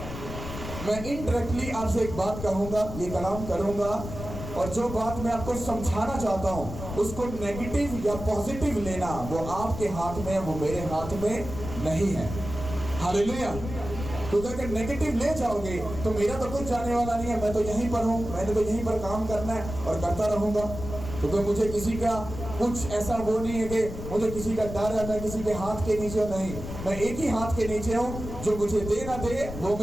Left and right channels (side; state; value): left; noise; rumble, 9 dB below the sound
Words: मैं इनडायरेक्टली आपसे एक बात कहूंगा, ये कलाम करूंगा, और जो बात मैं आपको समझाना चाहता हूं उसको नेगेटिव या पॉजिटिव लेना वो आपके हाथ में, वो मेरे हाथ में नहीं है। हालेलुया। क्योंकि अगर नेगेटिव ले जाओगे तो मेरा तो कुछ जाने वाला नहीं है, मैं तो यहीं पर हूँ, मैंने तो यहीं पर काम करना है और करता रहूंगा। क्योंकि मुझे किसी का कुछ ऐसा वो नहीं है कि मुझे किसी का डर है, मैं किसी के हाथ के नीचे नहीं, मैं एक ही हाथ के नीचे हूँ। जो मुझे दे ना दे वो